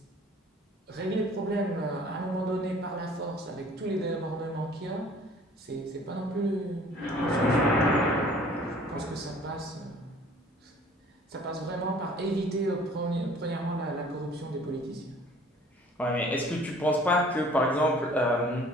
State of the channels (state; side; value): normal; both; correlation 0.52